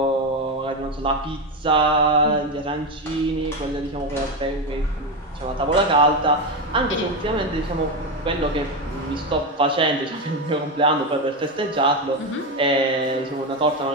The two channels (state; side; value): normal; both; correlation 0.13